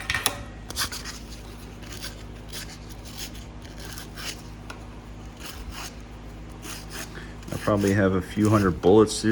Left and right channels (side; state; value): both; identical; correlation 1.00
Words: I probably have a few hundred bullets